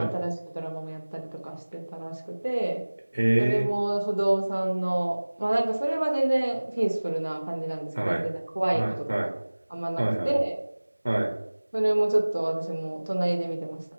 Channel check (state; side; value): inverted; both; correlation -1.00